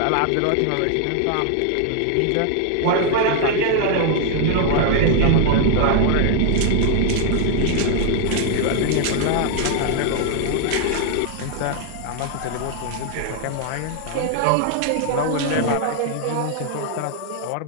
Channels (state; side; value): different; both; correlation 0.00